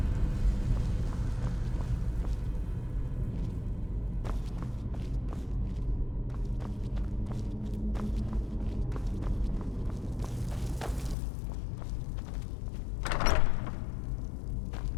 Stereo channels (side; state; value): right; drops out; at 11.2 s